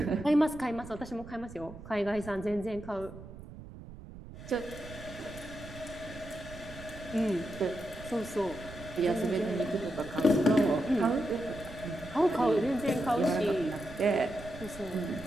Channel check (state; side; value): noise; right; rumble, 15 dB below the sound